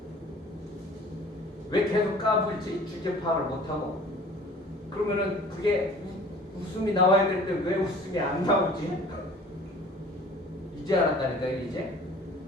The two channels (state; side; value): normal; both; correlation 0.48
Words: 왜 계속 까불지? 주제 파악을 못하고. 그러면은 그게 웃음이 나와야 될 때 왜 웃음이 안 나오지? 이제 알았다니까요, 이제.